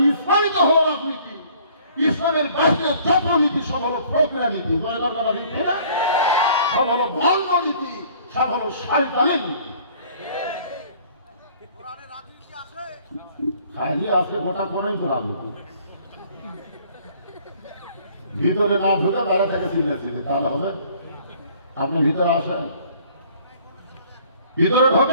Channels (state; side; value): inverted; both; correlation -0.56